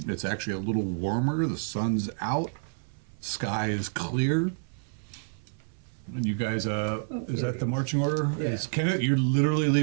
It's actually a little warmer. The sun's out. Sky is clear. And you guys, is that the marching order? Yeah. It's Kenneth, you're literally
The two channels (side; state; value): left; silent; 59 dB below the other